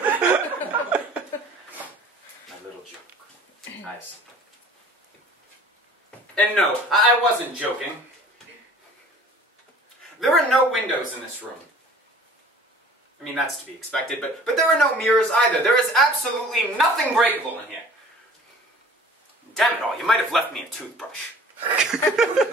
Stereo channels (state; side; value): normal; both; correlation 0.47